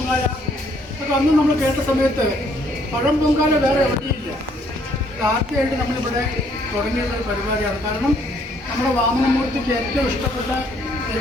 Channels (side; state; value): both; normal; correlation 0.66